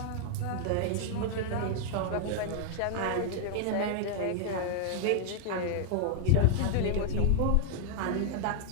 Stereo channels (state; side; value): different; both; correlation 0.00